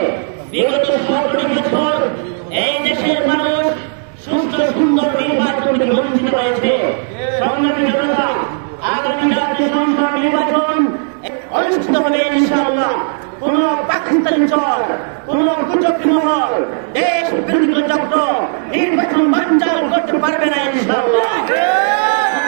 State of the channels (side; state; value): left; silent; digital silence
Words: বিগত 17 বছর এই দেশের মানুষ সুস্থ সুন্দর নির্বাচন থেকে বঞ্চিত হয়েছে। সংগ্রামী জনতা, আগামী জাতীয় সংসদ নির্বাচন অনুষ্ঠিত হবে ইনশাআল্লাহ। কোন পাকিস্তানি চর, কোন কুচক্রী মহল, দেশ বিরোধী চক্র নির্বাচন বানচাল করতে পারবে না ইনশাআল্লাহ।